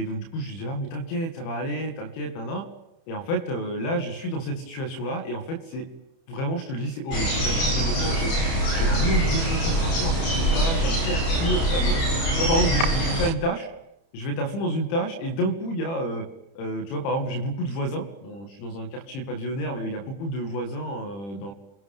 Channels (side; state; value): right; late; 30 ms